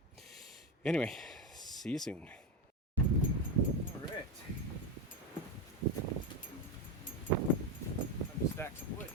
Anyway, see you soon. All right. Time to stack some wood.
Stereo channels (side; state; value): both; normal; correlation 0.14